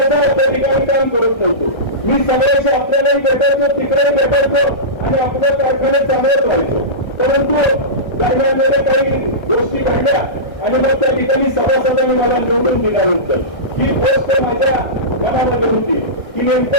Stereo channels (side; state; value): right; late; 1.3 ms